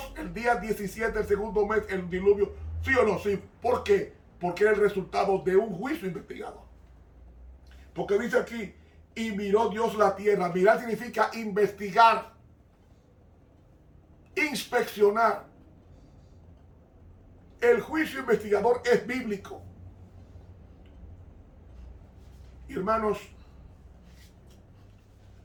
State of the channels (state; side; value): identical; both; correlation 1.00